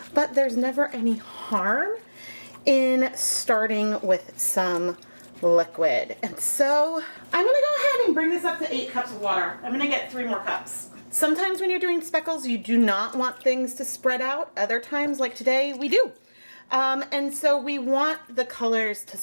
but there's never any harm in starting with some liquid. And so I'm gonna go ahead and bring this up to 8 cups of water. I'm gonna get 3 more cups. Sometimes when you're doing speckles, you do not want things to spread out. Other times, like today, we do. And so we want the colors to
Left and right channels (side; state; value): both; inverted; correlation -1.00